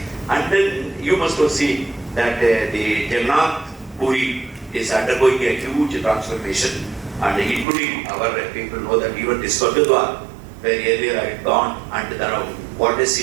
And then you must have seen that the Jagannath Puri is undergoing a huge transformation, and including our people know that even this Gurdwara, where earlier I had gone, and now what does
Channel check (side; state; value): left; drops out; at 7.7 s